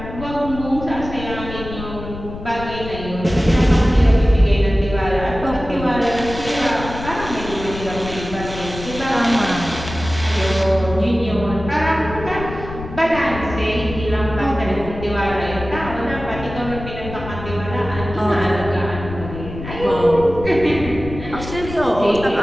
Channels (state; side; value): noise; left; rumble, 10 dB below the sound